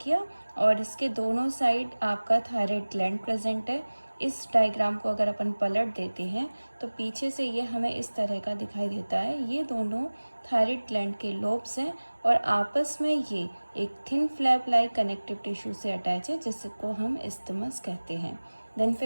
और इसके दोनों साइड आपका थायराइड ग्लैंड प्रेजेंट है। इस डायग्राम को अगर अपन पलट देते हैं तो पीछे से ये हमें इस तरह का दिखाई देता है। ये दोनों थायराइड ग्लैंड के लोब्स हैं और आपस में ये एक thin flap like connective tissue से अटैच है जिसको हम इस्थिमस कहते हैं। देन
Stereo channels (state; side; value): inverted; both; correlation -1.00